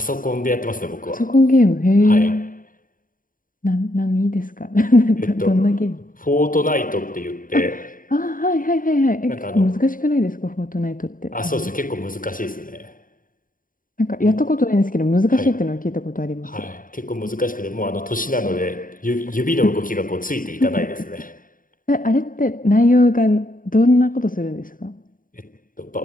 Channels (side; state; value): right; late; 0.40 ms